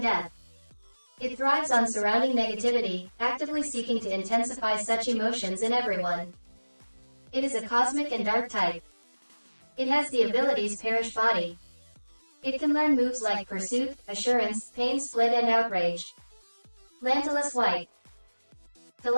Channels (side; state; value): both; inverted; correlation -1.00